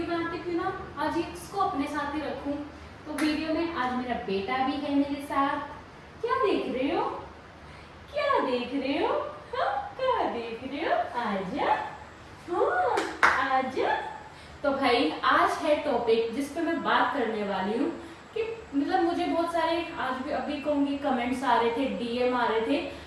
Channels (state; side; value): identical; both; correlation 1.00